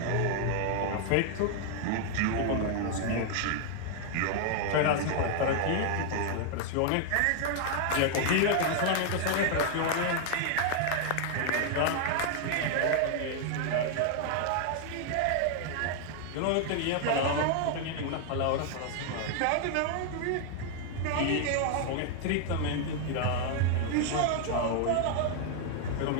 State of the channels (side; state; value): both; different; correlation 0.00